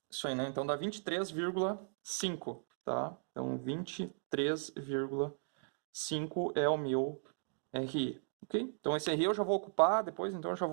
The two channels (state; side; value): silent; left; digital silence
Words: Isso aí, né? Então dá 23,5. Tá? Então 23,5 é o meu RE. Ok? Então esse RE eu já vou ocupar depois, então eu já